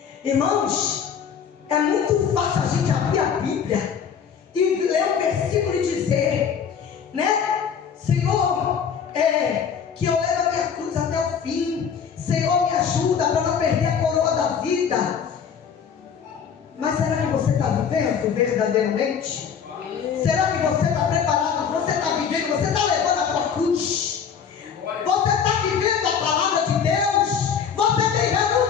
Irmãos, é muito fácil a gente abrir a Bíblia e ler um versículo e dizer, né? Senhor, que eu levo a minha cruz até o fim. Senhor, me ajuda para não perder a coroa da vida. Mas será que você está vivendo verdadeiramente? Será que você está preparado? Você está vivendo? Você está levando a tua cruz? Você está vivendo a palavra de Deus? Você tem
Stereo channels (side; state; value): right; quieter; 7.2 dB